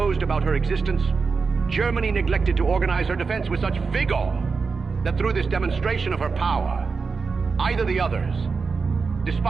about her existence, Germany neglected to organize her defense with such vigor that through this demonstration of her power, either the others,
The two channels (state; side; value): quieter; left; 4.8 dB